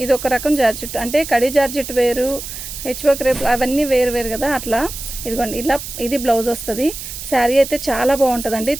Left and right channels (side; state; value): right; noise; hiss, 9 dB below the sound